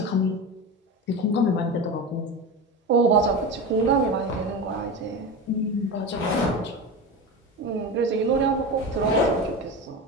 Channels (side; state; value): both; normal; correlation 0.24